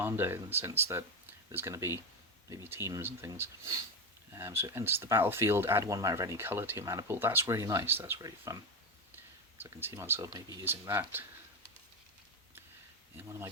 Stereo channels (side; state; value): both; normal; correlation 0.13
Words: in the sense that there's going to be maybe teams and things. So it enters the battlefield, add 1 mana of any colour to your mana pool. That's really nice, that's really fun. So I can see myself maybe using that in one of my